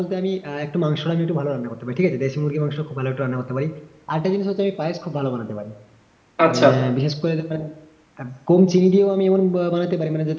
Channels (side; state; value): both; identical; correlation 1.00